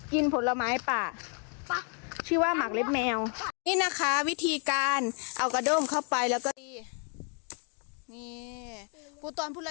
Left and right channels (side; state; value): right; quieter; 39.9 dB